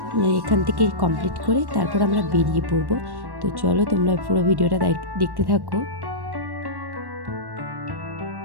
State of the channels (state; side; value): late; left; 1.1 ms